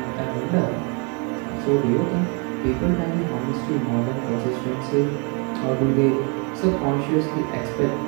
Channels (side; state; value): left; quieter; 34.0 dB